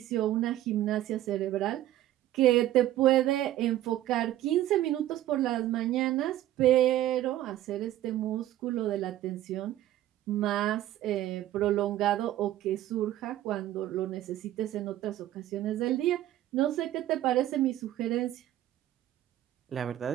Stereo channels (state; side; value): quieter; left; 13.6 dB